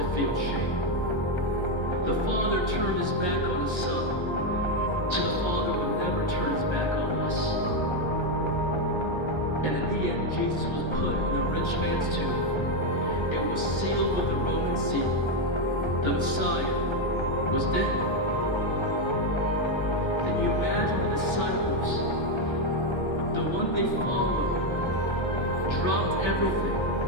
feel shame. The Father turned his back on his Son so the Father would never turn his back on us. And in the end, Jesus was put in a rich man's tomb. It was sealed with the Roman seal. The Messiah was dead. Can you imagine the disciples, the one they followed, dropped everything,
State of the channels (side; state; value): right; late; 1.3 ms